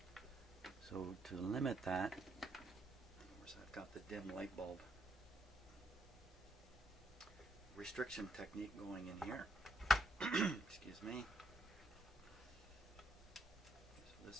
So to limit that, of course I've got the dim light bulb restriction technique going in here. Excuse me. So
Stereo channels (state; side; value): normal; both; correlation 0.75